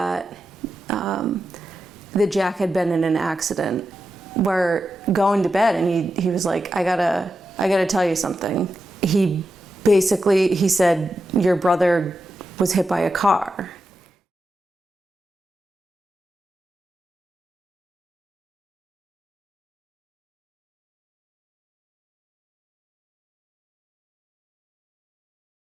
Jack had been in an accident. We're going to bed, and he was like, I gotta tell you something. He said, your brother was hit by a car.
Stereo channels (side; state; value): both; normal; correlation 0.89